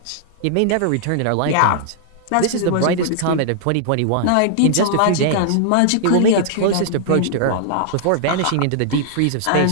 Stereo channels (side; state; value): both; different; correlation -0.01